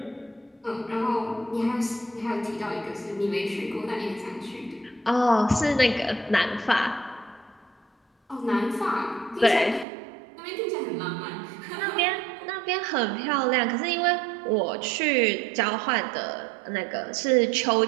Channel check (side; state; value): left; drops out; at 9.9 s